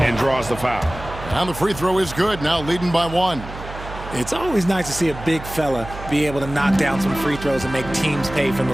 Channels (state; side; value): noise; right; hum, 12 dB below the sound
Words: and draws the foul. And the free throw is good, now leading by 1. It's always nice to see a big fella be able to knock down some free throws and make teams pay from the